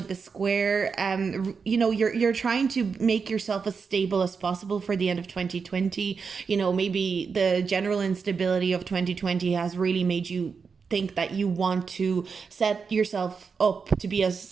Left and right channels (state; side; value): quieter; left; 5.5 dB